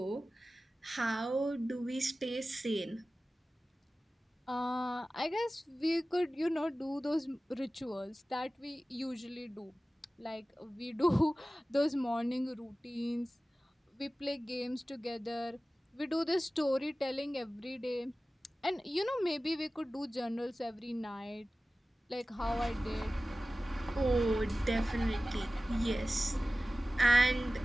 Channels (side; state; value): both; normal; correlation 0.96